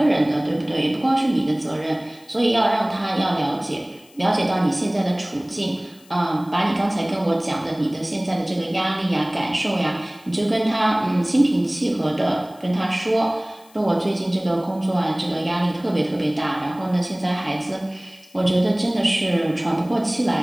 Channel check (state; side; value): noise; left; hiss, 27 dB below the sound